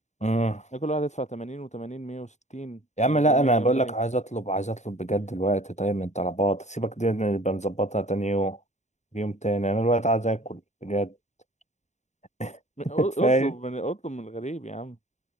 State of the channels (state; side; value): late; right; 0.34 ms